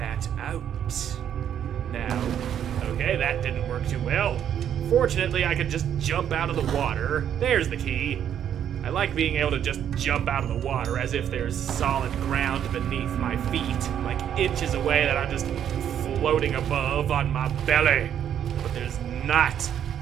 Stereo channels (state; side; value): quieter; left; 9.5 dB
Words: out. Now, okay, that didn't work too well. Fortunately, I could just jump out of the water. There's the key. I like being able to just jump out of the water as if there's solid ground beneath my feet, like inches away that I'm just floating above on my belly. But there's not.